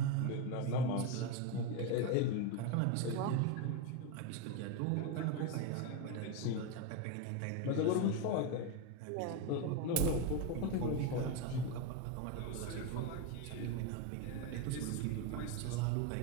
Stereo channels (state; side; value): different; both; correlation 0.03